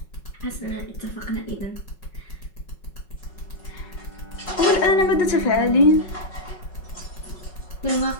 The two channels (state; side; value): late; right; 5.4 ms